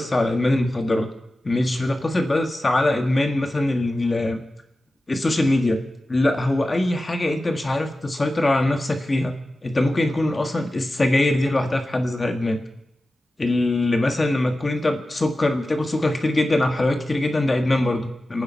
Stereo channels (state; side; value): normal; both; correlation 0.94